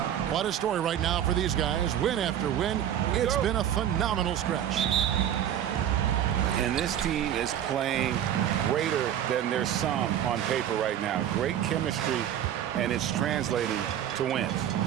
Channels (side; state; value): left; quieter; 10.5 dB